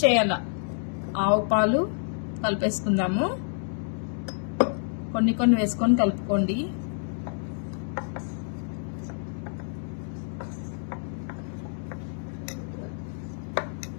చేయాల. ఆవు పాలు కలిపేసుకుందాము. కొన్ని కొన్ని వేసుకొని కలుపుకోండి.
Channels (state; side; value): silent; right; 59 dB below the other